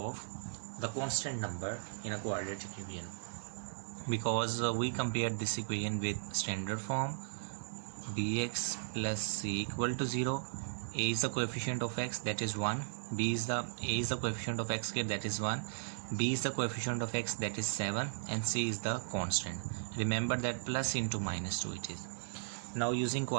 the constant number in a quadratic equation. Because we compared this equation with standard form, bx plus c equal to 0. A is the coefficient of x, that is 1. A is the coefficient of x square, that is 1. B is the coefficient of x, that is 7, and c is the constant. Remember that plus into -2 it is. Now using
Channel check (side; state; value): left; silent; 53 dB below the other